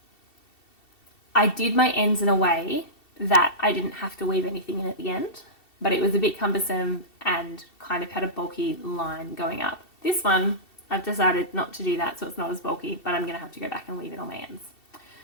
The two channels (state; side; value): late; right; 2.7 ms